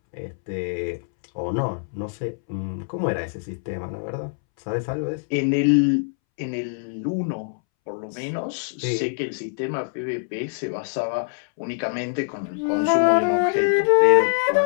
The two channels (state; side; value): silent; right; 63 dB below the other